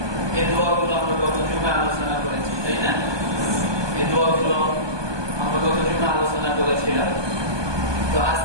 এই দোয়াগুলো আমরা গত জুমায় আলোচনা করেছি, তাই না? এই দোয়াগুলো আমরা গত জুমায় আলোচনা করেছিলাম। তো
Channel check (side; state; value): left; late; 1.2 ms